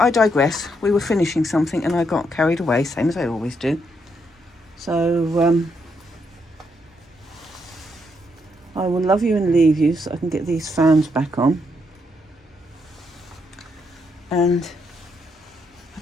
digress. We were finishing something and I got carried away, same as I always do. So, I will love you and leave you so I can get these fans back on. And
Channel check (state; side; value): normal; both; correlation 0.77